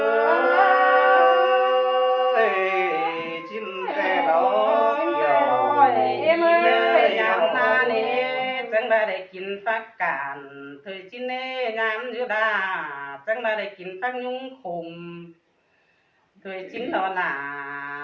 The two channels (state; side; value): identical; both; correlation 1.00